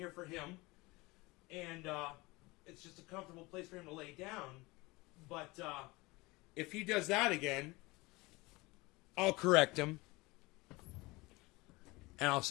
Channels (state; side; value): quieter; right; 23.0 dB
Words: for him, and it's just a comfortable place for him to lay down. But if he does that again, I'll correct him, and